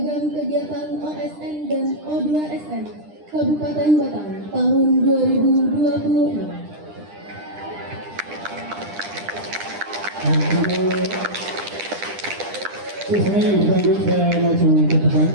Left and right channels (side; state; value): left; late; 9.9 ms